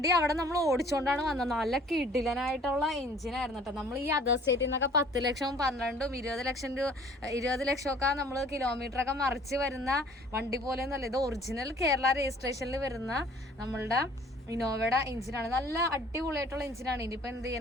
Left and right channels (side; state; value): both; normal; correlation 0.53